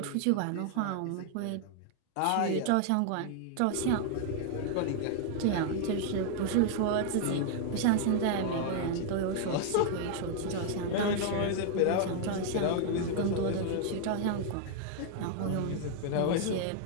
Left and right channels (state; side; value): different; both; correlation 0.00